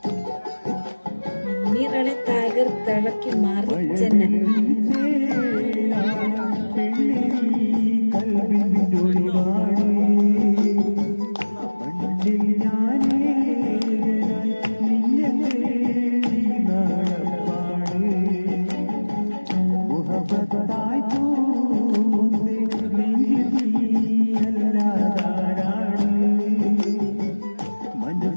നിറളെ തകർത്തിളക്കി മാറിച്ചെന്നെ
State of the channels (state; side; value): inverted; both; correlation -1.00